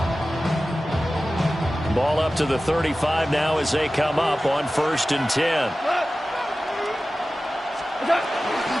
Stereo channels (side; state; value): both; normal; correlation 0.95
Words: Ball up to the 35 now as they come up on 1st and 10.